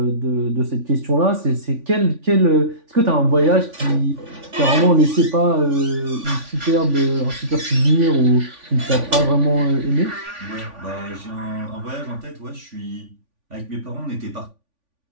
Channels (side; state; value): left; late; 3.5 ms